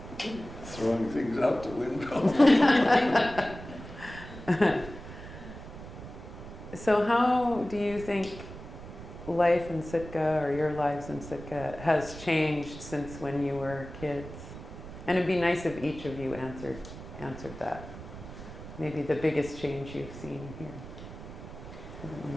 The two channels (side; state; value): right; noise; rumble, 13 dB below the sound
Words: throwing things out the window. So how do you think life in Sitka, or your lives in Sitka, has changed since when you were kids? And it'd be nice if each of you answered that. Maybe the biggest change you've seen here. The one